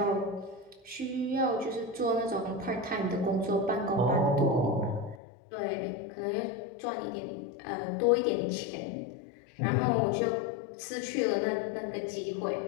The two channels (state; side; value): drops out; right; at 5.2 s